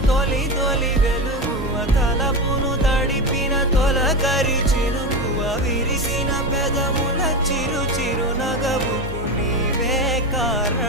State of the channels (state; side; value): normal; both; correlation 0.19